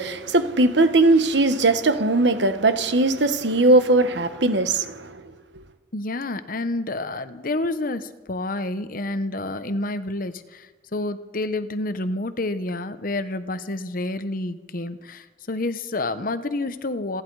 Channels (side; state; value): both; normal; correlation 0.22